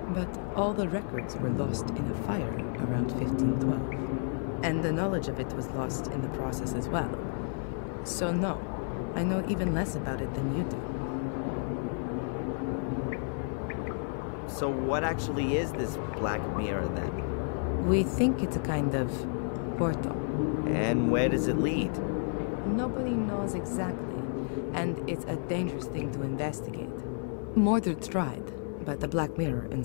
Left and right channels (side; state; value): right; silent; 57 dB below the other